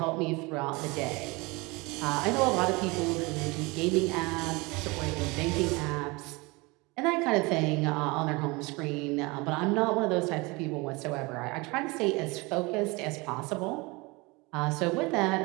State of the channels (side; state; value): left; quieter; 25.3 dB